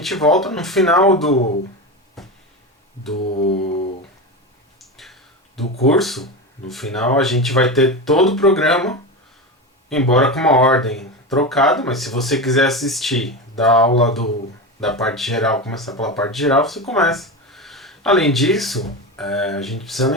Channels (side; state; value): both; normal; correlation 0.21